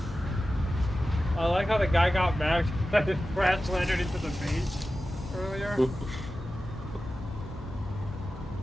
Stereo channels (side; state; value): both; normal; correlation 0.94